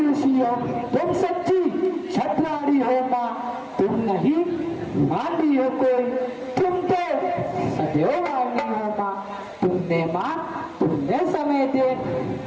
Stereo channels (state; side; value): identical; both; correlation 1.00